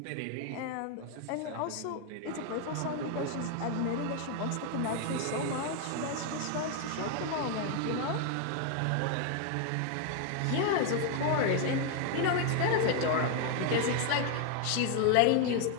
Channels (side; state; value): both; different; correlation 0.00